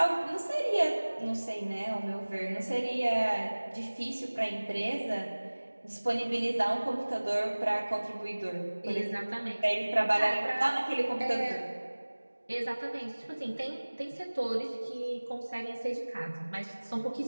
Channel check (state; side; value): inverted; both; correlation -1.00